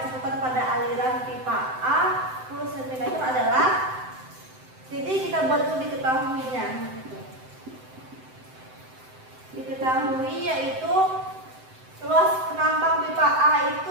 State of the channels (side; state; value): left; late; 7.8 ms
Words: pada aliran pipa A 10 cm adalah, jadi kita buat dulu diketahuinya. Diketahui yaitu luas penampang pipa A